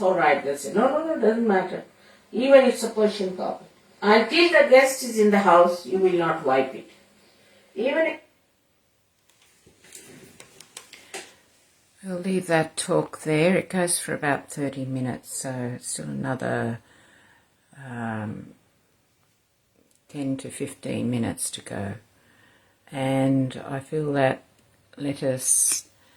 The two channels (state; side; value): identical; both; correlation 1.00